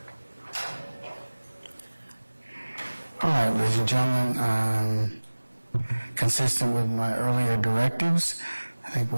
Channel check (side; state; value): both; inverted; correlation -1.00